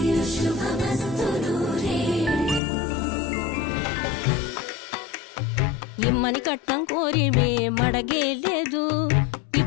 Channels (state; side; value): drops out; right; at 2.6 s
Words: శుభమస్తు నూరేళ్ళు. ఇమ్మని కట్నం కోరి మడగేలేదు,